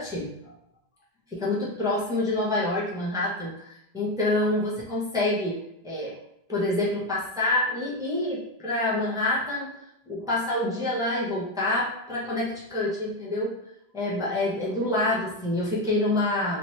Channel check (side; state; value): both; normal; correlation 0.11